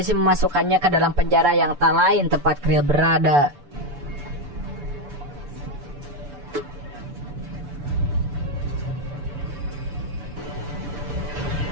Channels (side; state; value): left; late; 6.9 ms